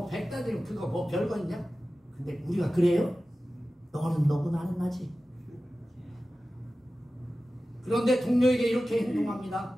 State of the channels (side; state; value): both; normal; correlation 0.95